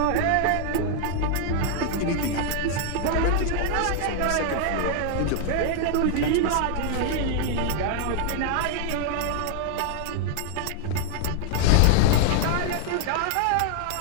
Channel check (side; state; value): both; different; correlation 0.00